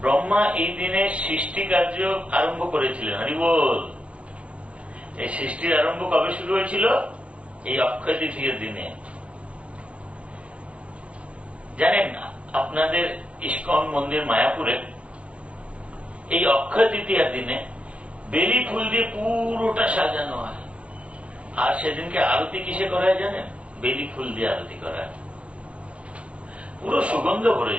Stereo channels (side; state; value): left; late; 0.062 ms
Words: ব্রহ্মা এই দিনে সৃষ্টি কার্য আরম্ভ করেছিলেন। হরিবোল। এই সৃষ্টির আরম্ভ কবে শুরু হয়েছিল? এই অক্ষয় তৃতীয়ার দিনে। জানেন আপনাদের ইস্কন মন্দির মায়াপুরে এই অক্ষয় তৃতীয়ার দিনে বেলি ফুল দিয়ে পুরোটা সাজানো হয়। আর সেদিনকে আরতি কিসে করা হয় জানেন? বেলি ফুল দিয়ে আরতি করা হয়। পুরো সুগন্ধ ভরে